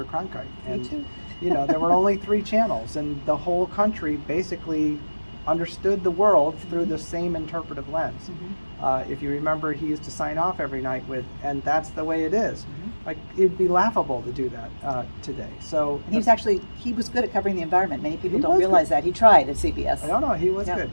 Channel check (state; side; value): inverted; both; correlation -1.00